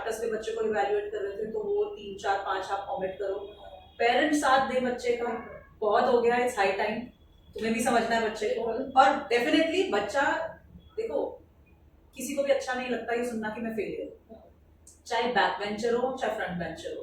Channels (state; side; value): identical; both; correlation 1.00